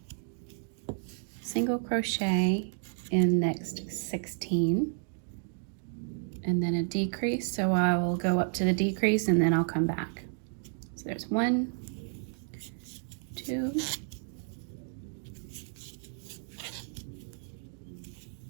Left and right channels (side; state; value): left; silent; digital silence